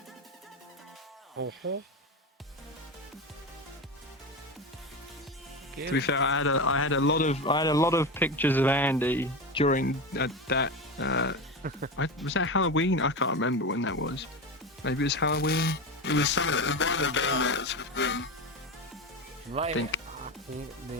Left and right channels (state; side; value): normal; both; correlation 0.21